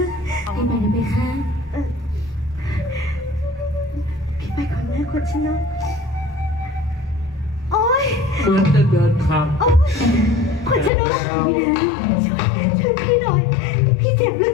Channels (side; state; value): right; drops out; at 10.9 s